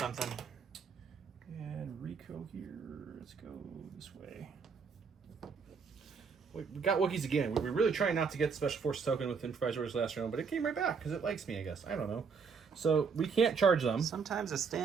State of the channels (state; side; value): quieter; left; 5.6 dB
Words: And Rico here. Let's go this way. We got Wookiees again. We were really trying not to get the Special Forces token with improvised orders last round, but it came right back because it likes me, I guess. I don't know. So we can't charge them. Sometimes a